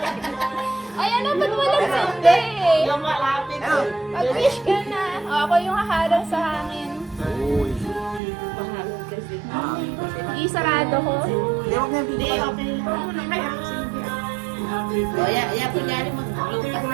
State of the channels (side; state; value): left; drops out; at 8.2 s